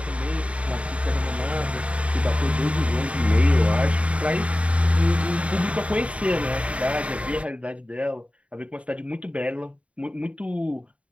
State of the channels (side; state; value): left; late; 0.063 ms